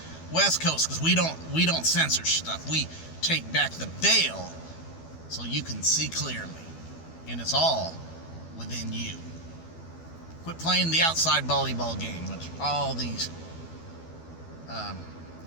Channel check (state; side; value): late; right; 12 ms